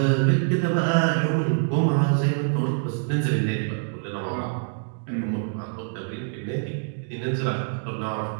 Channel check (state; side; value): silent; left; digital silence